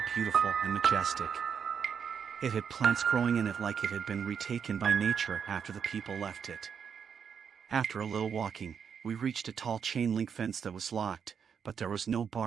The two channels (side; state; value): left; quieter; 7.1 dB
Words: beautiful and majestic. It had plants growing in it like it had been retaken by nature after the people left it. After a little walking, we reached a tall chain-link fence that was locked, but there was no